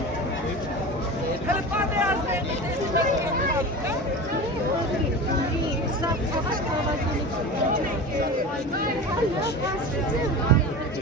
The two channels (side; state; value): both; normal; correlation 0.31